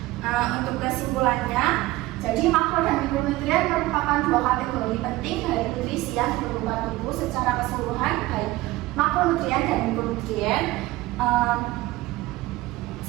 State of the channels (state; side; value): quieter; left; 18.5 dB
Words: Untuk kesimpulannya, jadi makro dan mikronutrien merupakan 2 kategori penting dari nutrisi yang diperlukan tubuh secara keseluruhan, baik makronutrien dan mikronutrien